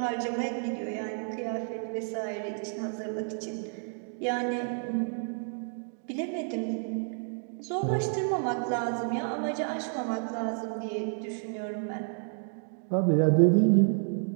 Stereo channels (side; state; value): left; silent; 58 dB below the other